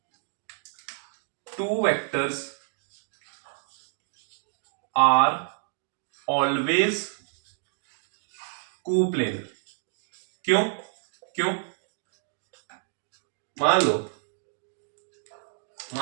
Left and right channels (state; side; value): silent; left; digital silence